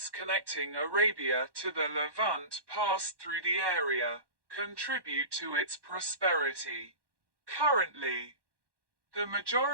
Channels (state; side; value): late; left; 1.1 ms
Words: connecting Arabia to the Levant passed through the area, contribute to its prosperity. Currently, the